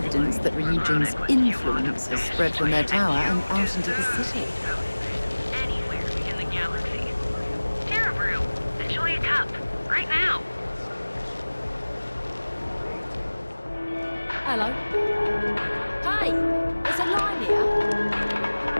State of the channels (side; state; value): both; inverted; correlation -1.00